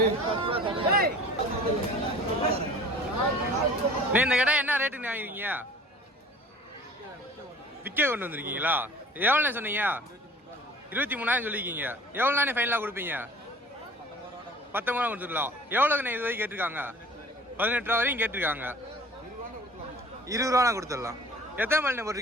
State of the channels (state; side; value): normal; both; correlation 0.47